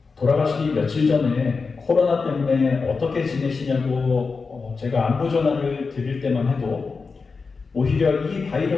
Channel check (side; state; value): right; quieter; 4.6 dB